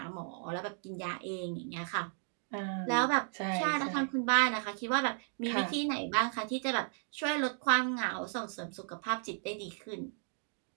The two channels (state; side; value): silent; left; 55 dB below the other